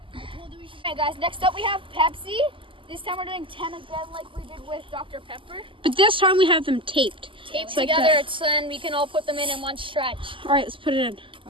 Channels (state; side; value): late; left; 0.25 ms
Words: Okay, guys, next up we have Pepsi. This time we're doing 10 again like we did with Dr. Pepper. But this time we have them taped. Taped like together, that. so then we can all put them in one stretch. All right, let's put it in.